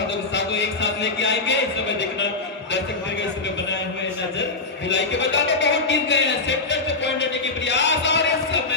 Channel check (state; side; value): quieter; right; 3.6 dB